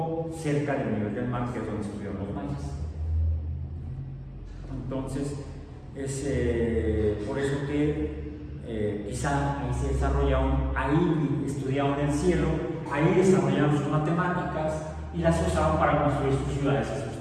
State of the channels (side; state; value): both; identical; correlation 1.00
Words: cerca del nivel del mar, que es donde estuvieron los mayas. Entonces, es por eso que quizá ahí se desarrollaron, ahí estudiaron el cielo, ahí desarrollaron sus matemáticas y las usaban para construir sus ciudades y